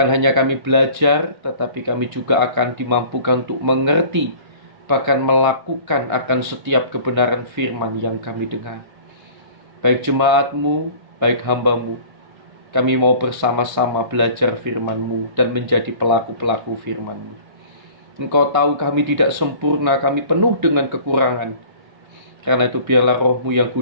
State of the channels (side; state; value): left; late; 1.3 ms